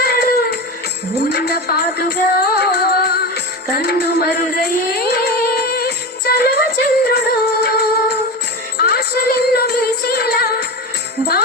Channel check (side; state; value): both; normal; correlation 0.23